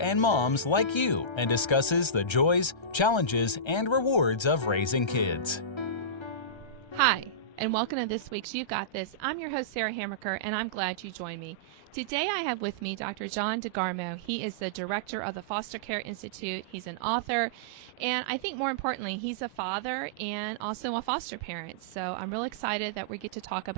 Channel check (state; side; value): late; right; 1.3 ms